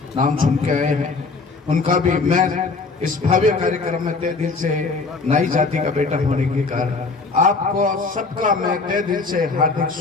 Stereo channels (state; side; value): quieter; right; 4.1 dB